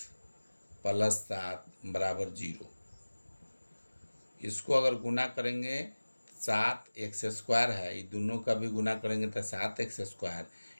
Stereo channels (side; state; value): both; inverted; correlation -1.00